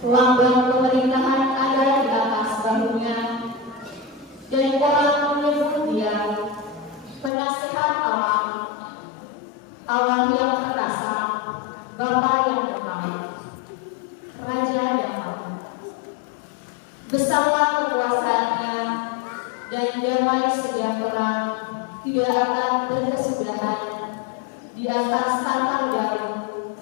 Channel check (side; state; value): right; drops out; at 7.3 s